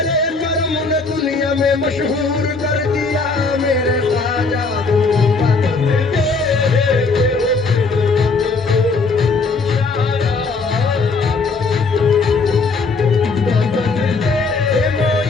कर्म ने दुनिया में मशहूर कर दिया। मेरे ख्वाजा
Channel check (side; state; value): right; quieter; 4.2 dB